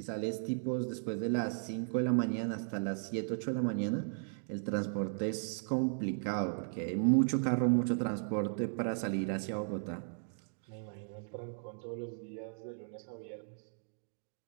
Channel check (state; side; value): silent; left; digital silence